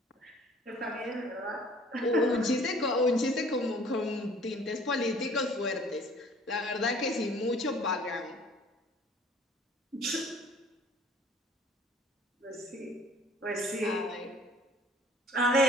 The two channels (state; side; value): normal; both; correlation 0.53